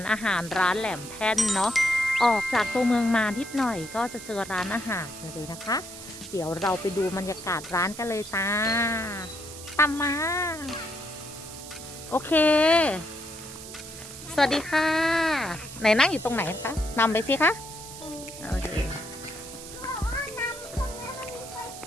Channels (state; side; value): noise; right; hiss, 13 dB below the sound